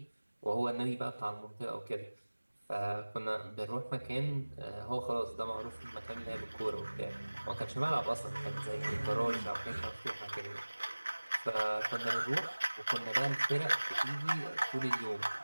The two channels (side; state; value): both; inverted; correlation -1.00